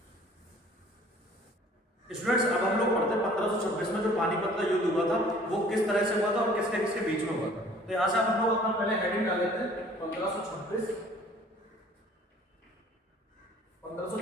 स्टूडेंट्स अब हम लोग पढ़ते हैं 1526 में जो पानीपत का युद्ध हुआ था वो किस तरह से हुआ था और किसके किसके बीच में हुआ था। तो यहां से हम लोग अपना पहले हेडिंग डाल लेते हैं 1526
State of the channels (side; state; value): both; normal; correlation 0.52